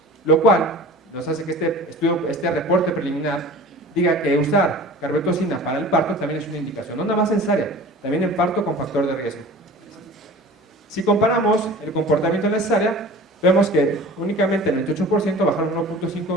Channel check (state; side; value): normal; both; correlation 0.41